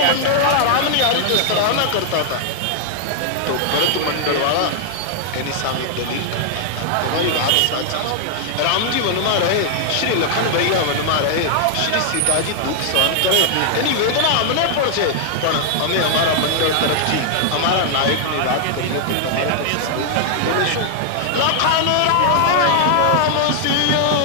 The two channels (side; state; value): both; different; correlation -0.01